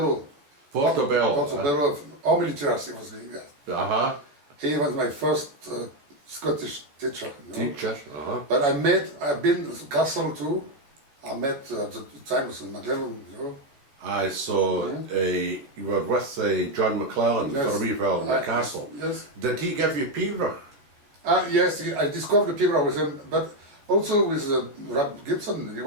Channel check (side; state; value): left; late; 14 ms